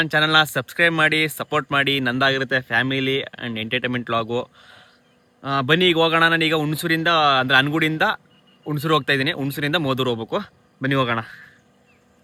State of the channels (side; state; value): both; identical; correlation 1.00